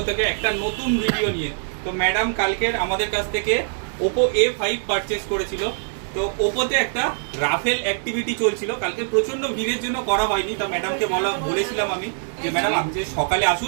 থেকে একটা নতুন ভিডিও নিয়ে। তো ম্যাডাম কালকের আমাদের কাছ থেকে ওপো A5 পারচেস করেছিল। তো ওপোতে একটা রাফেল অ্যাক্টিভিটি চলছিল, কালকে প্রচন্ড ভিড়ের জন্য করা হয়নি। তো ম্যাডামকে বলেছিলাম আমি যে ম্যাডাম আপনি যে সকালে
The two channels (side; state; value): left; silent; digital silence